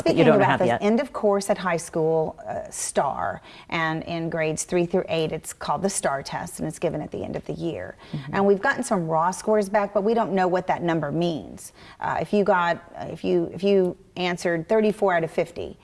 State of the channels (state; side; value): identical; both; correlation 1.00